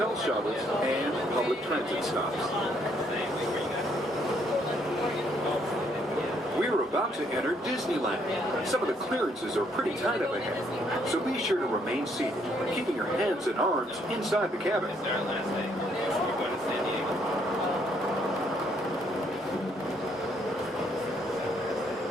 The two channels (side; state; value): both; normal; correlation 0.69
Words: shuttles, and public transit stops. We're about to enter Disneyland. Some of the clearances are pretty tight up ahead, so be sure to remain seated, keeping your hands and arms inside the cabin.